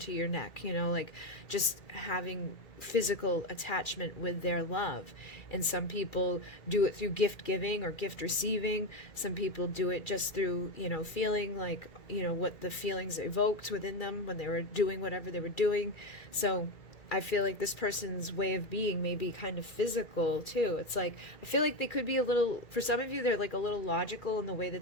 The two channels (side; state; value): right; late; 2.4 ms